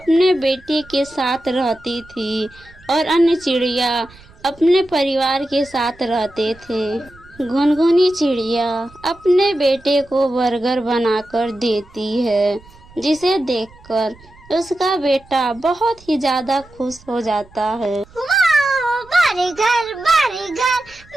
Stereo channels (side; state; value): right; noise; rumble, 25 dB below the sound